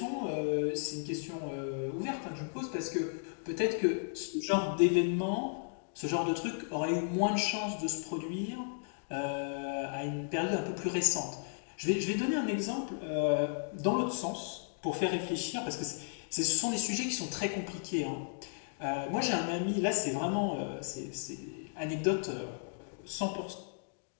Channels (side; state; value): right; silent; digital silence